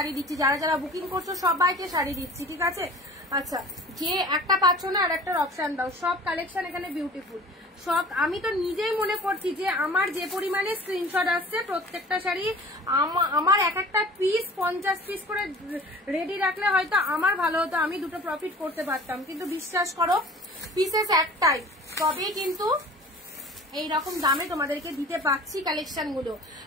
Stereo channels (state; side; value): normal; both; correlation 0.44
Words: দিচ্ছি, যারা যারা বুকিং করছো সবাইকে শাড়ি দিচ্ছি, ঠিক আছে? আচ্ছা, যে একটা পাচ্ছ না আর একটার অপশন দাও। সব কালেকশন এখানে বিউটিফুল সব। আমি তো নিজেই মনে করছি যে আমার যে পরিমাণে স্ক্রিনশট আসছে প্রত্যেকটা শাড়ি আমার এক একটা পিস 50 পিস করে রেডি রাখলে হয়তো আমার ভালো হতো, আমি দুটো প্রফিট করতে পারতাম। কিন্তু বিশ্বাস করো পিসেস একটাই, তবেই কিন্তু এইরকম দামে তোমাদেরকে দিতে পাচ্ছি কালেকশন গুলো।